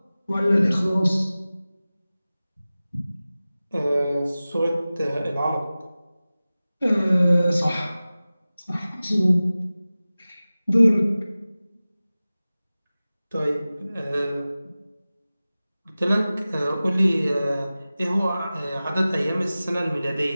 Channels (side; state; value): both; inverted; correlation -0.97